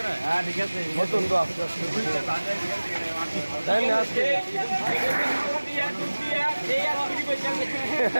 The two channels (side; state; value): both; inverted; correlation -1.00